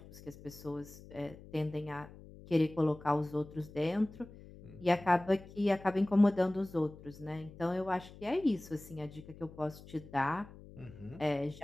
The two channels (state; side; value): noise; left; hum, 18 dB below the sound